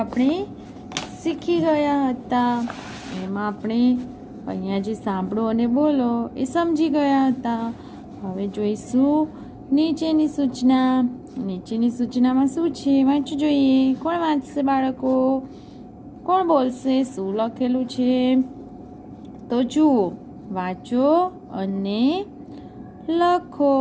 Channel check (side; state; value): both; identical; correlation 1.00